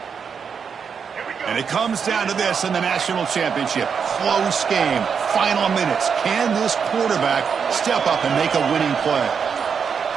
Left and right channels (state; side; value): quieter; left; 6.5 dB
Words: And it comes down to this in the national championship. Close game. Final minutes. Can this quarterback step up and make a winning play?